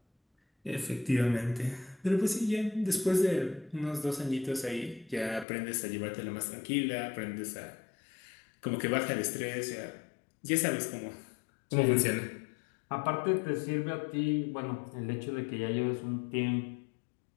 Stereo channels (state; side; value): drops out; right; at 5.5 s